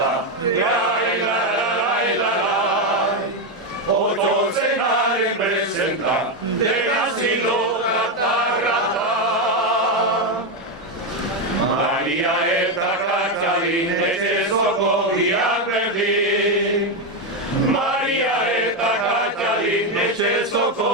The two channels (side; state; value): both; normal; correlation 0.07